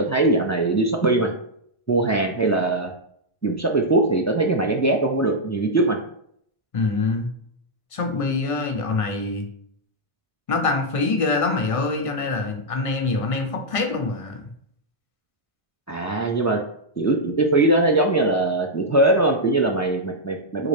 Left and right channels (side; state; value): right; late; 1.6 ms